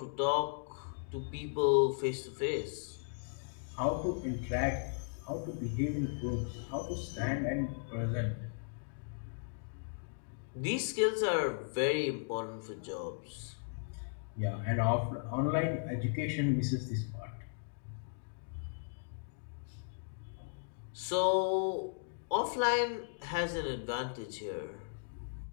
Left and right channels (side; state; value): right; silent; digital silence